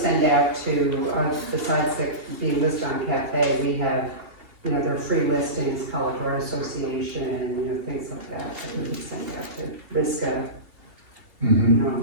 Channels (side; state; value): left; late; 2.7 ms